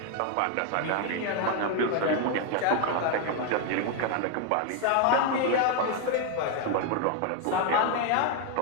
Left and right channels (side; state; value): both; different; correlation 0.01